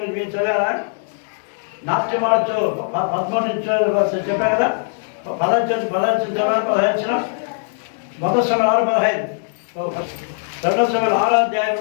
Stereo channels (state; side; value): silent; right; 66 dB below the other